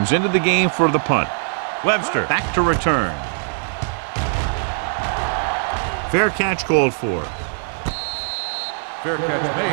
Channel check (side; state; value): left; silent; 65 dB below the other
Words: into the game for the punt. Webster back to return. Fair catch called for. Fair catch